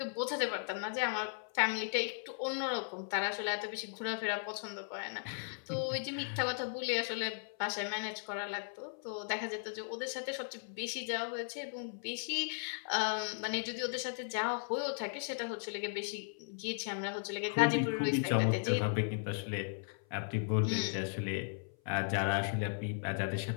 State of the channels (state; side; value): silent; right; 53 dB below the other